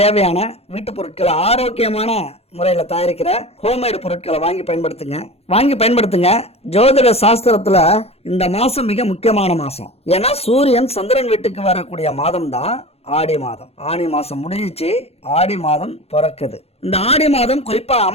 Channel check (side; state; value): right; late; 0.29 ms